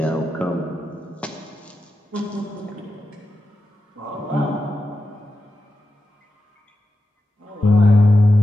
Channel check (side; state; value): both; normal; correlation 0.90